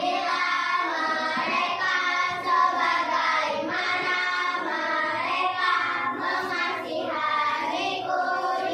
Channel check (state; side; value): identical; both; correlation 1.00